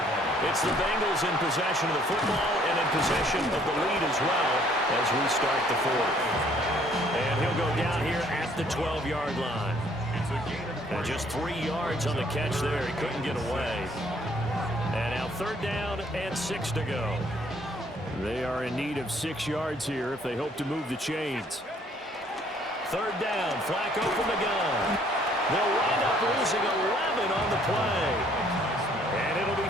It's the Bengals in possession of the football and in possession of the lead as well as we start the fourth. And he'll go down here at the 12-yard line. And just 3 yards on the catch there. He couldn't get away. And now third down and 6 to go. They are in need of 6 yards here if they hope to move the chains. Third down, Flacco from the gun. They'll wind up losing 11 on the play. And it'll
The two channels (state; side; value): normal; both; correlation 0.62